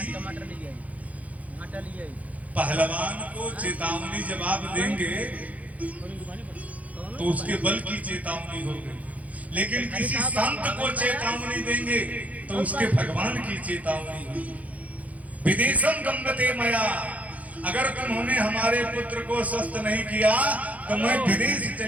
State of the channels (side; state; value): left; late; 0.071 ms